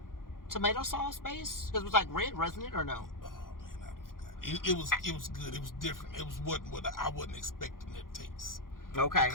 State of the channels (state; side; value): late; right; 0.91 ms